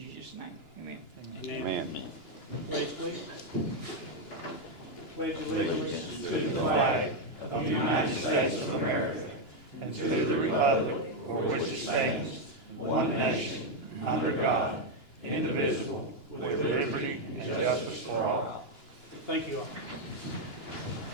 name. Amen. Amen. Pledge, please. Pledge allegiance To the flag of the United States of America and to the republic for which it stands, one nation, under God, indivisible, with liberty and justice for all. Thank you all.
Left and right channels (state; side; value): late; right; 2.9 ms